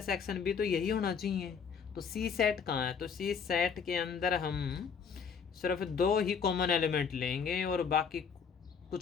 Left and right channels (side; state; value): right; quieter; 6.4 dB